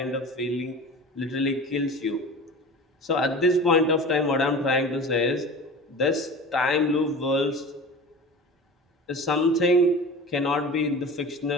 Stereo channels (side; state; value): both; normal; correlation 0.35